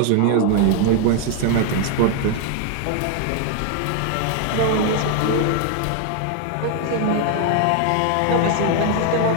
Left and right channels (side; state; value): both; different; correlation 0.00